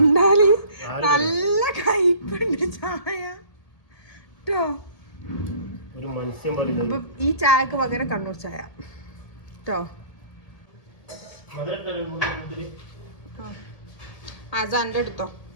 നല്ല കയ്പുണ്ട് ചായ കേട്ടോ. അപ്പൊ ഈ ചായക്ക് പകരം കണ്ണൂർ ചായ കേട്ടോ. അതെന്റെ എടുത്തോ.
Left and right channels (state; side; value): late; right; 1.8 ms